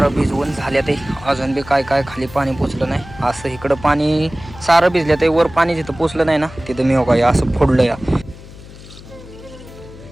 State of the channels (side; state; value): left; noise; hum, 18 dB below the sound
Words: भिजवून झाल्या ते. अजून बी काय खाली पाणी पोचलं नाही. असं इकडं पाणी सारं भिजलं ते. वर पाणी जिथं पोचलं नाही ना तिथं मी बघा असं फोडलं या.